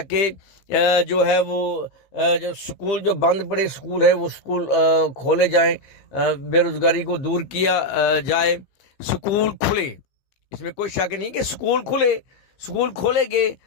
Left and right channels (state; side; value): late; right; 15 ms